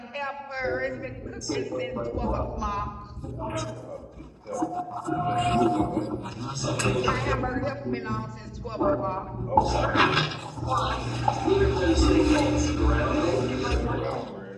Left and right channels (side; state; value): both; identical; correlation 1.00